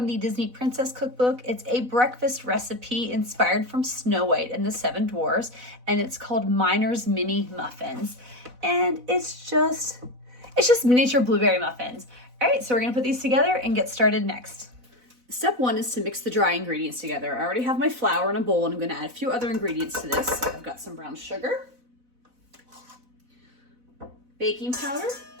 the Disney Princess Cookbook. It's a breakfast recipe inspired from Snow White and the Seven Dwarfs, and it's called Miner's Mini Muffins. And it's just miniature blueberry muffins. All right, so we're gonna put these together and get started next. Step one is to mix the dry ingredients together. I already have my flour in a bowl, and I'm gonna add a few other ingredients to this. So I've got some brown sugar, baking powder,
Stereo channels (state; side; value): late; left; 4.0 ms